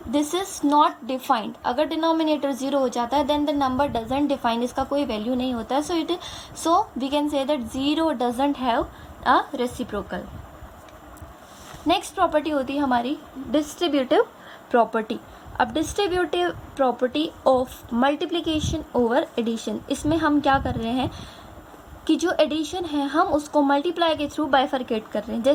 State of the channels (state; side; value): identical; both; correlation 1.00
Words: this is not defined. अगर डिनोमिनेटर 0 हो जाता है then the number doesn't define, इसका कोई वैल्यू नहीं होता है. So we can say that 0 doesn't have a reciprocal. Next property होती है हमारी डिस्ट्रीब्यूटिव प्रॉपर्टी. अब distributive property of multiplication over addition, इसमें हम क्या कर रहे हैं कि जो एडिशन है हम उसको मल्टीप्लाई के थ्रू बाइफरकेट कर रहे हैं.